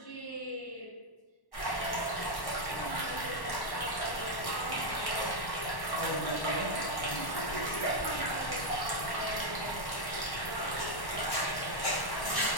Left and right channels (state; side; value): late; right; 1.1 ms